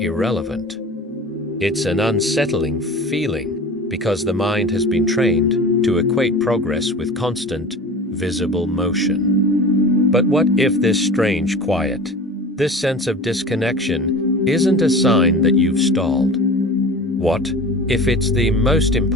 It's an unsettling feeling because the mind has been trained to equate progress with constant, visible motion. But what if this strange quiet, this sense of disconnection, isn't a sign that you've stalled? What if it's the most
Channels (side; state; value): both; normal; correlation 0.36